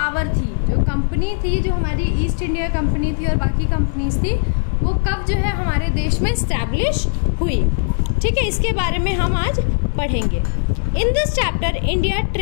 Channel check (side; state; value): right; silent; digital silence